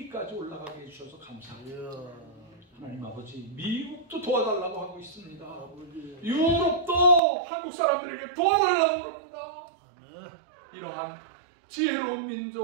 올라가게 해주셔서 감사합니다. 하나님 아버지 미국도 도와달라고 하고 있습니다. 유럽도 한국 사람들에게 도와달라고 합니다. 이러한 지혜로운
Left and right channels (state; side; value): drops out; left; at 7.2 s